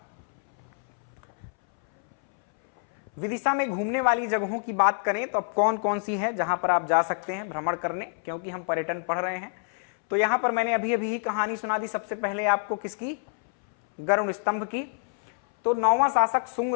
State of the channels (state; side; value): silent; right; 60 dB below the other